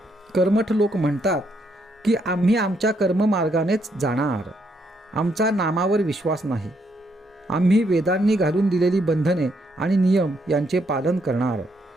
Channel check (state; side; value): normal; both; correlation 0.75